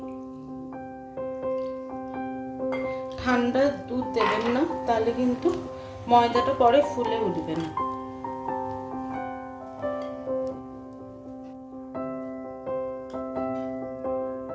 ঠান্ডা দুধ দেবেন না, তাহলে কিন্তু ময়দাটা পরে ফুলে উঠবে না।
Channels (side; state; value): both; identical; correlation 1.00